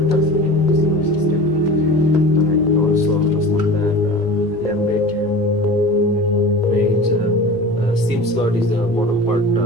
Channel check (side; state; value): both; normal; correlation 0.36